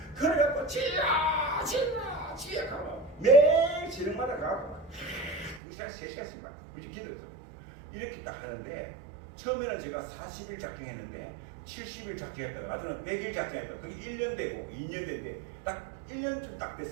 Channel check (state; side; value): drops out; left; at 5.6 s